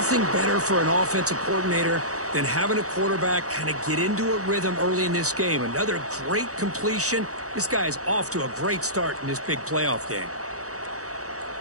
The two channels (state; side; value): late; left; 0.65 ms